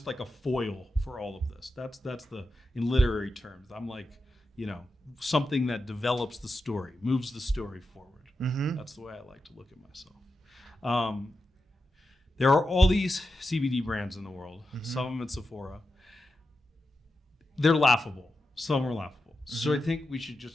like a foil for all of this. That's in literary terms. I'm like, something that develops the story, moves the story forward. Mm-hmm. That's the way I like to look at myself. There are all these CBD brands in the world, some of them at Sephora. They're laughable. Some are laughable. So I think we should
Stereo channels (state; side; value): normal; both; correlation 0.89